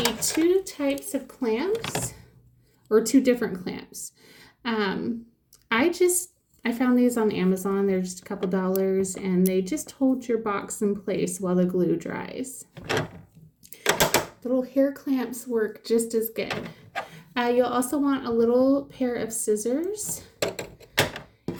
2 types of clamps, or 2 different clamps. I found these on Amazon. They're just a couple dollars, and they just hold your box in place while the glue dries. Little hair clamps work just as good. You'll also want a little pair of scissors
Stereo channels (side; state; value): both; identical; correlation 1.00